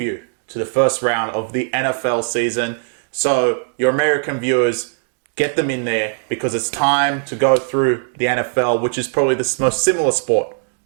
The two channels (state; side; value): silent; left; digital silence